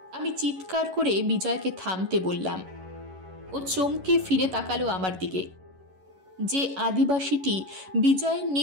আমি চিৎকার করে বিজয়কে থামতে বললাম। ও চমকে ফিরে তাকালো আমার দিকে। যে আদিবাসীটি বিজয়ের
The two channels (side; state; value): left; late; 11 ms